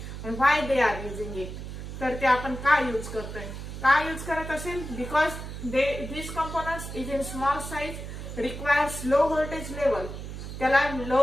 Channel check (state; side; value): noise; right; hum, 9 dB below the sound